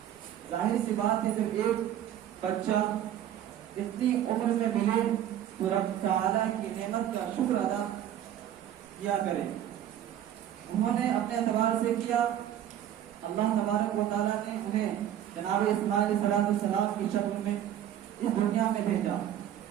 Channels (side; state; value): left; quieter; 11.0 dB